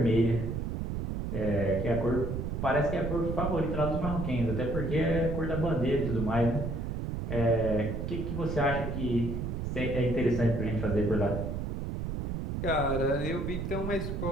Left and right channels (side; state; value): right; noise; rumble, 3 dB below the sound